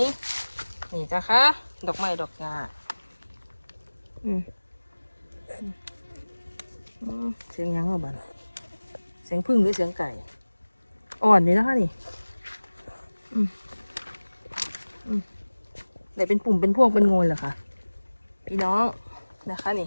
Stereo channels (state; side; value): inverted; both; correlation -1.00